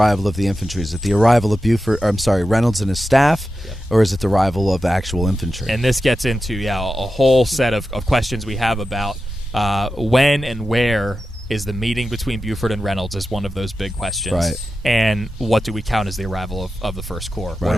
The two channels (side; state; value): both; normal; correlation 0.92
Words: of the infantry? Is it the arrival of Reynolds and his staff, or is it the arrival of actual infantry? And this gets into a whole set of questions we have about when and where is the meeting between Buford and Reynolds is one of those big questions. Right. And what do we count as the arrival of the First Corps? What Right.